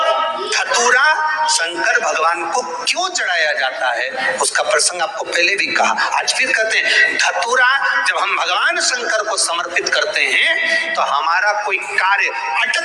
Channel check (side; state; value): both; identical; correlation 1.00